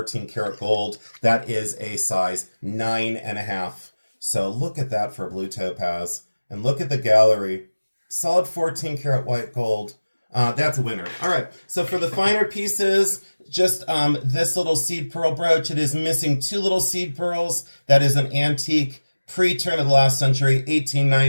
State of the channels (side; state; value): both; inverted; correlation -1.00